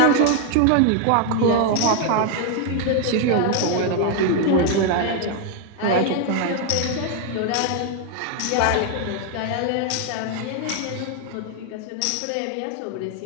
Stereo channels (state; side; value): different; both; correlation 0.01